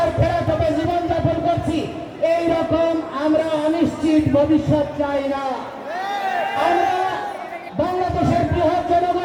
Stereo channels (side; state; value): both; identical; correlation 1.00